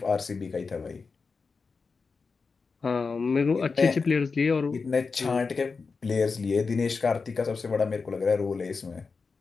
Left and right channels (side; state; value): right; quieter; 4.7 dB